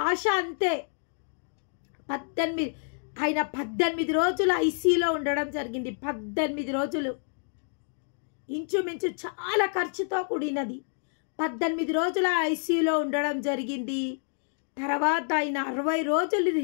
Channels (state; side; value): silent; right; 59 dB below the other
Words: ఆశ అంతే. 18 రోజులు ఐసీయూలో ఉండడం జరిగింది. 18 రోజులు, ఇంచుమించు చాలా ఖర్చుతో కూడినది. 18 రోజుల ఐసీయూలో ఉండడం జరిగింది. తర్వాత ఆయన 60 రోజులు